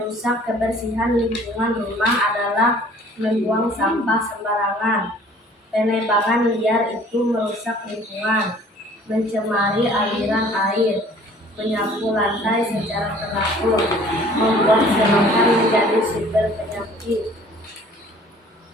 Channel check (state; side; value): normal; both; correlation 0.52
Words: kebersihan lingkungan rumah adalah membuang sampah sembarangan. Penebangan liar itu merusak lingkungan, mencemari aliran air, menyapu lantai secara teratur, membuat selokan menjadi sumber penyakit.